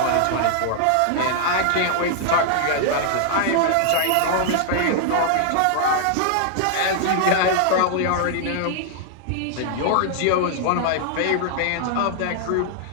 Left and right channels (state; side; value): different; both; correlation -0.01